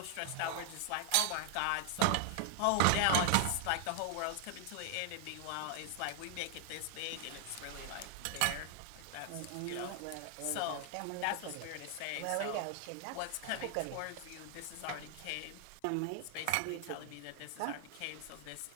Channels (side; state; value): both; different; correlation 0.00